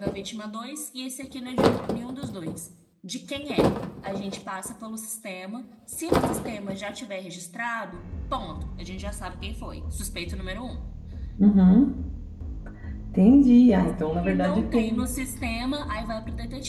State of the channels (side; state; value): both; identical; correlation 1.00